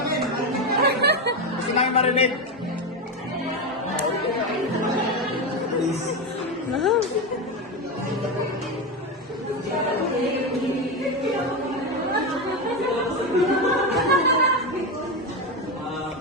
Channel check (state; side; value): normal; both; correlation 0.14